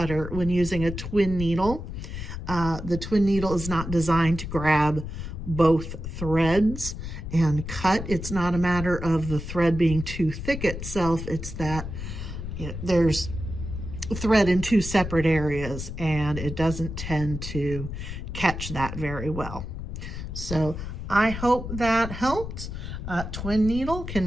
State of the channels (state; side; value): noise; left; rumble, 7 dB below the sound